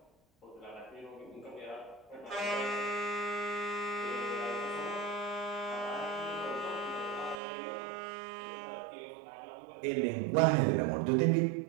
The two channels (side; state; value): left; drops out; at 7.4 s